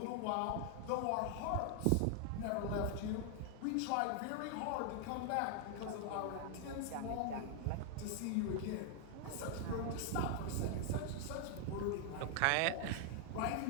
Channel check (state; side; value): different; both; correlation 0.00